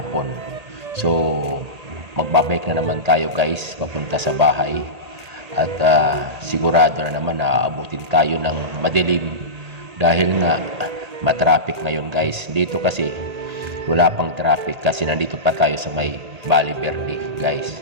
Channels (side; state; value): left; late; 1.8 ms